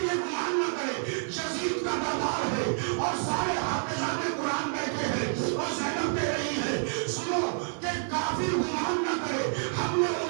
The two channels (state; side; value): silent; left; digital silence